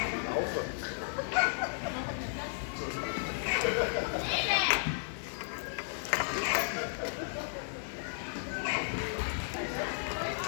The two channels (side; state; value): right; silent; digital silence